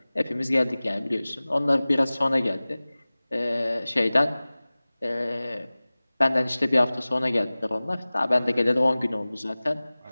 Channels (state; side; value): inverted; both; correlation -0.99